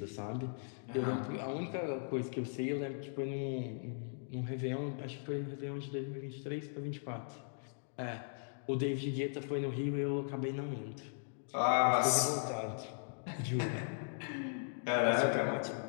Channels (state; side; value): silent; right; digital silence